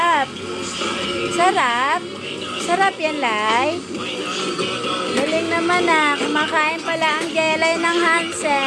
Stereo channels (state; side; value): identical; both; correlation 1.00